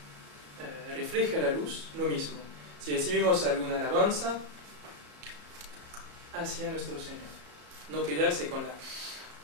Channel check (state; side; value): late; left; 33 ms